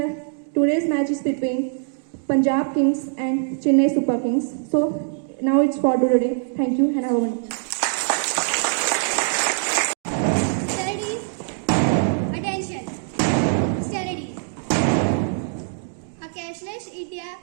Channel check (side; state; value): left; silent; digital silence